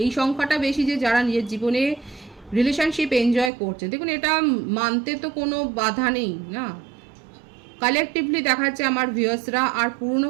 এই সংখ্যাটা বেশি যে যারা নিজের জীবনে রিলেশনশিপ এনজয় করছে। দেখুন, এটা মানতে তো কোনো বাধা নেই না। কালেকটিভলি দেখা যাচ্ছে আমার ভিউয়ার্সরা আর পুরনো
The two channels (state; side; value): drops out; left; at 3.5 s